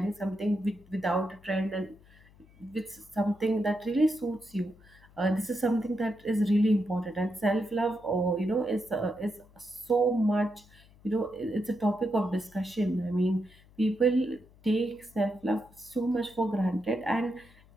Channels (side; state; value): left; noise; hum, 26 dB below the sound